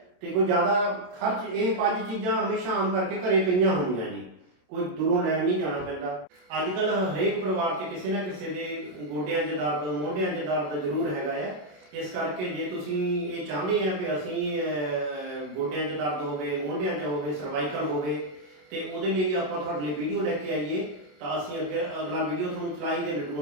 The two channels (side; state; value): left; late; 27 ms